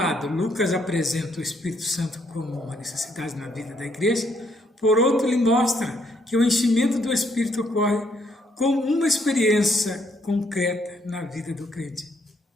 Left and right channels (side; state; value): both; normal; correlation 0.71